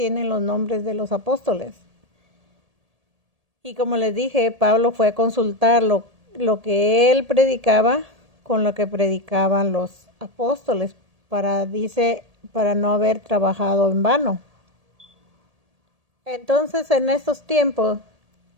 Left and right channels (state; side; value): late; left; 1.8 ms